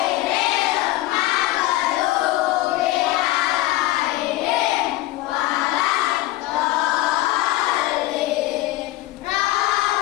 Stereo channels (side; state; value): right; quieter; 17.0 dB